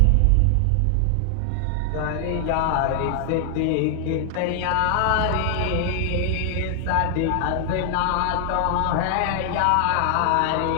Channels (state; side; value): different; both; correlation 0.00